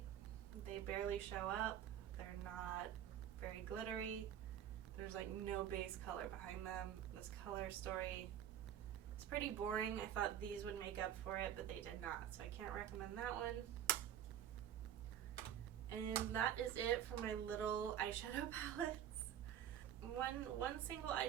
They barely show up. They're not very glittery. There's like no base color behind them. This color story is pretty boring. I thought these would make up for it, but they did not. So I can't recommend that one. And that is it for my little eyeshadow palettes. One single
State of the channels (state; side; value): quieter; left; 10.2 dB